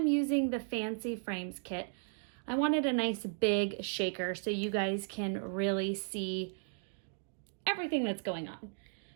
using the Fancy Frames kit. I wanted a nice big shaker so you guys can really see everything that's going on.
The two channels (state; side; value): silent; left; digital silence